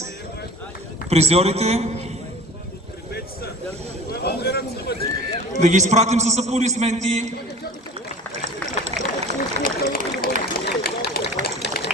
призьорите. Да ги изпратим с аплодисменти.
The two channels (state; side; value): normal; both; correlation 0.41